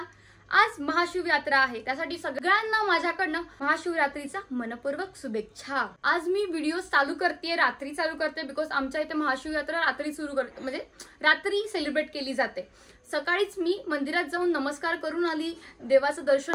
आज महाशिवरात्र आहे, त्यासाठी सगळ्यांना माझ्याकडनं महाशिवरात्रीचा मनपूर्वक शुभेच्छा। आज मी व्हिडिओ चालू करते, रात्री चालू करते, बिकॉज आमच्या इथे महाशिवरात्र रात्री सुरू करते, म्हणजे रात्री सेलिब्रेट केली जाते। सकाळीच मी मंदिरात जाऊन नमस्कार करून आली, देवाचं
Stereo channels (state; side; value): identical; both; correlation 1.00